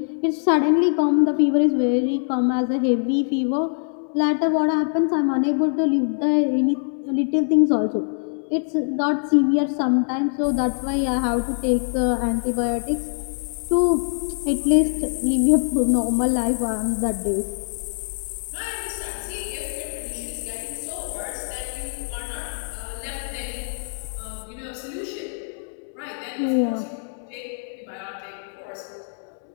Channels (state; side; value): silent; right; digital silence